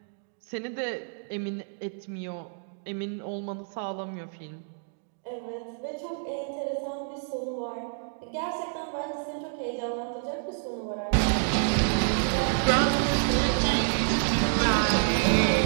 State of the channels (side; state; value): left; silent; digital silence